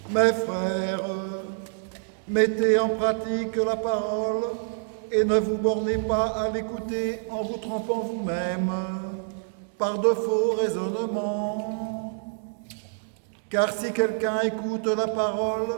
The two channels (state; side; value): silent; left; digital silence